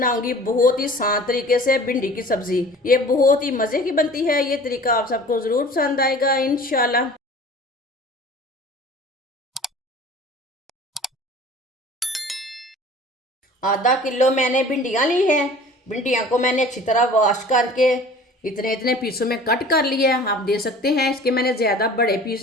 बहुत ही आसान तरीके से भिंडी की सब्जी। ये बहुत ही मज़े की बनती है। ये तरीका आप सबको ज़रूर पसंद आएगा इंशाल्लाह। आधा किलो मैंने भिंडियाँ ली हैं। भिंडियाँ को मैंने अच्छी तरह वॉश करके इतने इतने पीसों में कट कर लिया है। आप देख सकते हैं इसके मैंने ज़्यादा बड़े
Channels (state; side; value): normal; both; correlation 0.45